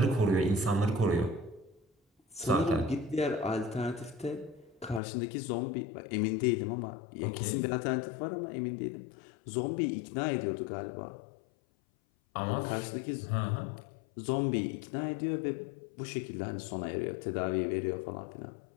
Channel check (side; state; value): right; drops out; at 5.0 s